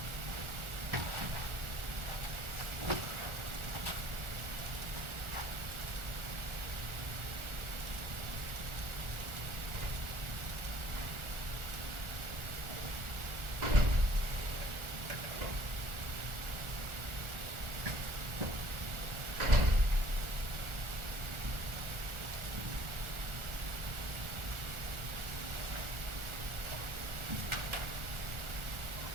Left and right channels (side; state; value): left; late; 1.4 ms